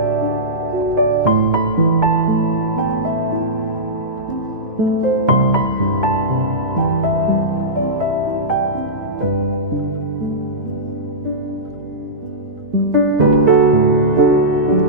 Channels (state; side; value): late; left; 3.1 ms